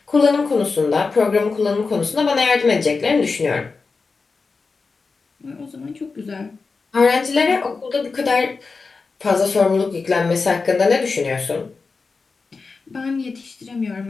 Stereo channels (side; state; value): right; quieter; 4.4 dB